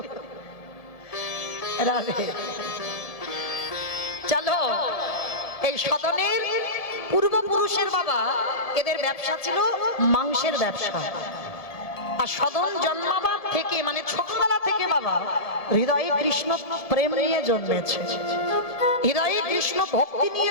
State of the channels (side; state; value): right; late; 1.5 ms